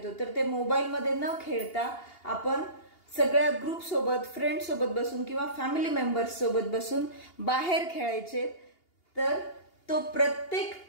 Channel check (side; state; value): right; late; 2.8 ms